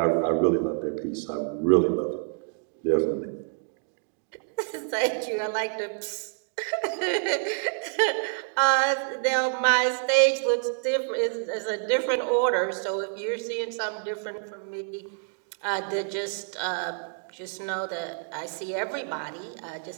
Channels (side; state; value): left; silent; 59 dB below the other